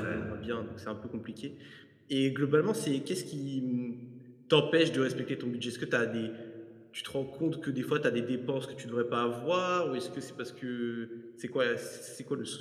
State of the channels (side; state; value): both; identical; correlation 1.00